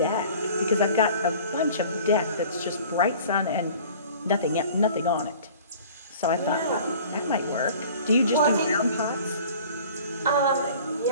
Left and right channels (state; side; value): inverted; both; correlation -0.46